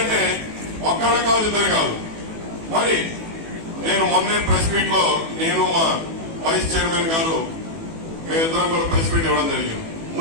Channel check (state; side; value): late; left; 18 ms